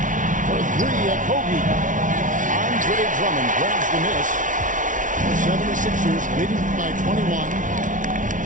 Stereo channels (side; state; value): left; late; 0.38 ms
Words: For 3, Okogie. Andre Drummond grabs the miss. The 76ers leading by 21.